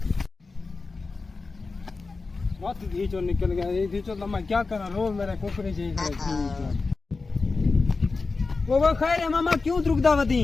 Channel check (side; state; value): right; quieter; 4.0 dB